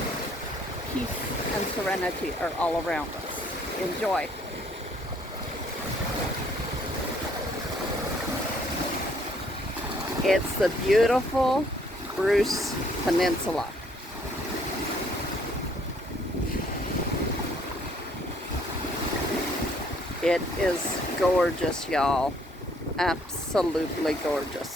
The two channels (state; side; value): normal; both; correlation 0.64